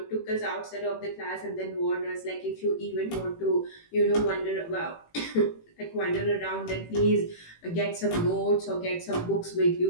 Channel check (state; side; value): late; right; 18 ms